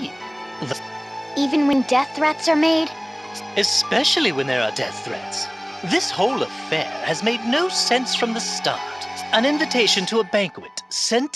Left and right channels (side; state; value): both; identical; correlation 1.00